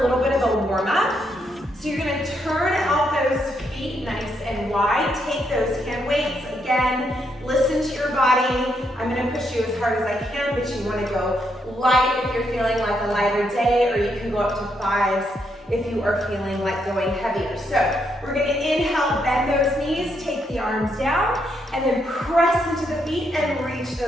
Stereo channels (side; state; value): both; normal; correlation 0.77